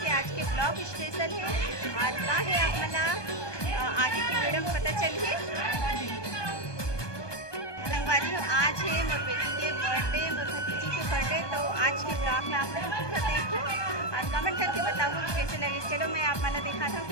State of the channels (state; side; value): late; right; 1.2 ms